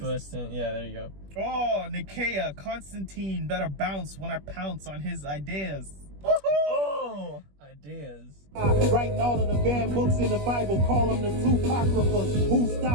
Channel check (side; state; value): left; late; 21 ms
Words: Yeah, there you go. Oh, Nicaea, Constantine, better bounce when I pounce on his ideas. Oh, ideas. Writing all of the banned books in the Bible, call them the two apocryphas. Who's